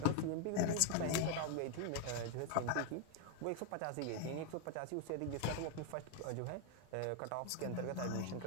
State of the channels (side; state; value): both; different; correlation 0.01